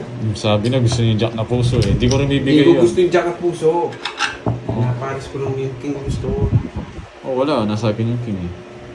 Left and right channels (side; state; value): both; identical; correlation 1.00